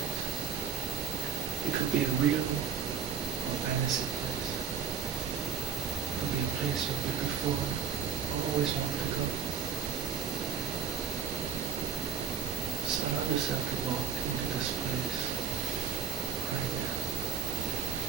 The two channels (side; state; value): left; quieter; 5.8 dB